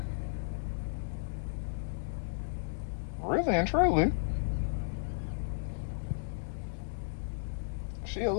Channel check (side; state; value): right; silent; digital silence